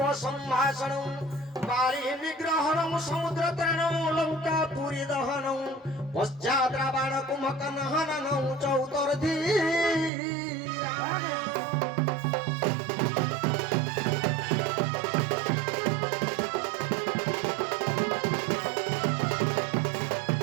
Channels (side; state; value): left; drops out; at 10.1 s